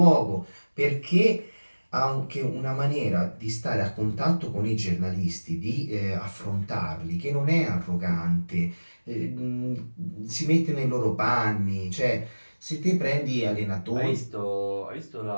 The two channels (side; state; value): both; inverted; correlation -1.00